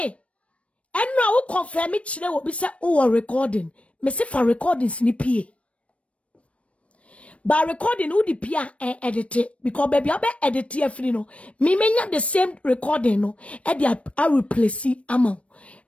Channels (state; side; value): late; right; 0.063 ms